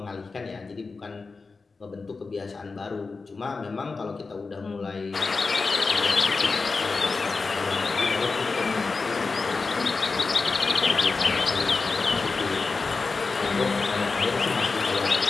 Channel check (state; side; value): quieter; right; 4.2 dB